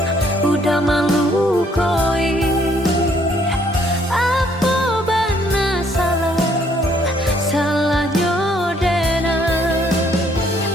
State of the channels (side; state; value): both; normal; correlation 0.66